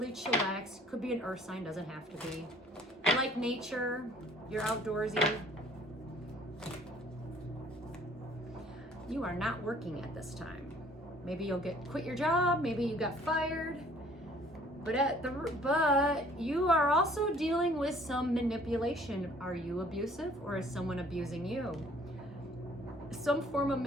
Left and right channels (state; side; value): normal; both; correlation 0.56